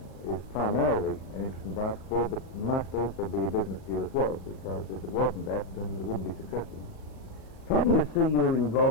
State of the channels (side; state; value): right; late; 38 ms